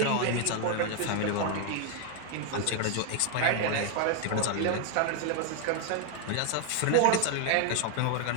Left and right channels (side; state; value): both; different; correlation 0.00